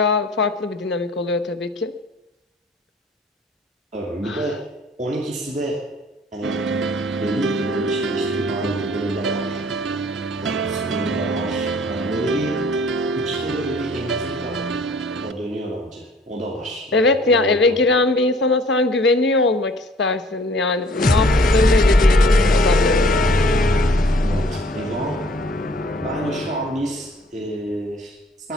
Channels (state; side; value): normal; both; correlation 0.54